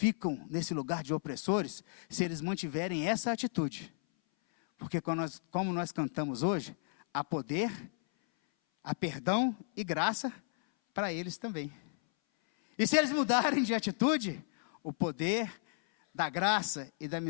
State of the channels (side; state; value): right; silent; 56 dB below the other